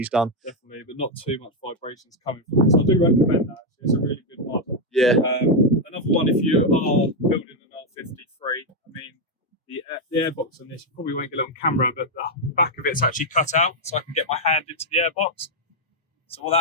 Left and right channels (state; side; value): normal; both; correlation 0.02